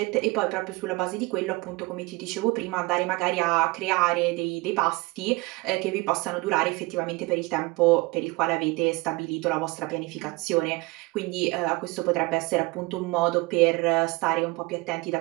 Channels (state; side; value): quieter; left; 23.9 dB